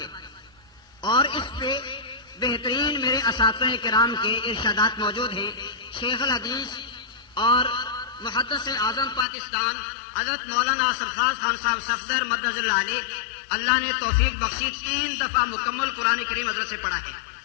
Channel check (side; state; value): right; drops out; at 9.2 s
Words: اور اس پہ بہترین میرے اساتذہ کرام کے ارشادات موجود ہیں. شیخ الحدیث اور محدث اعظم پاکستان حضرت مولانا سرفراز خان صاحب صفدر مدظ اللہ علیہ، اللہ نے توفیق بخشی 3 دفعہ مکمل قرآن کریم حضرت سے پڑھا ہے.